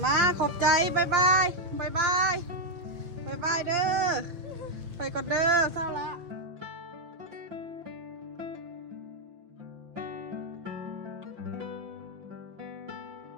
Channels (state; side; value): late; left; 6.0 ms